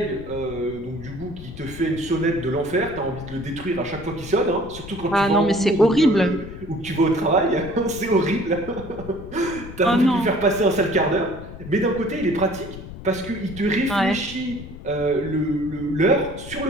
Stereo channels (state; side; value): noise; left; rumble, 13 dB below the sound